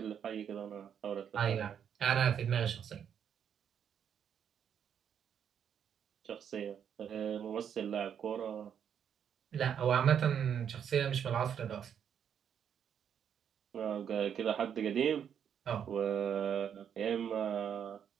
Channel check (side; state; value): left; quieter; 8.3 dB